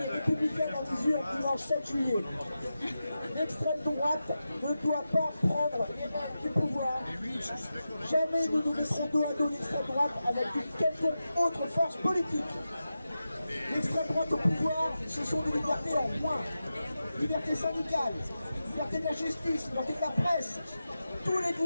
et républicaine en mesure dimanche 7 juillet. L'extrême droite ne doit pas prendre les rênes du pouvoir. Jamais nous nous mettrons dos à dos l'extrême droite avec une quelconque autre force politique. L'extrême droite au pouvoir, ce sont des libertés en moins. Liberté syndicale, liberté de la justice, liberté de la presse. Tous les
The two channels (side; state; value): both; inverted; correlation -0.91